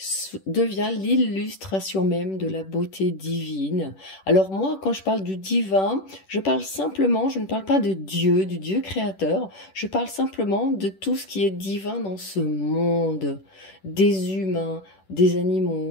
devient l'illustration même de la beauté divine. Alors moi, quand je parle du divin, je parle simplement, je ne parle pas de Dieu, du Dieu créateur, je parle simplement de tout ce qui est divin dans ce monde, des humains, des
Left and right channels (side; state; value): right; late; 10 ms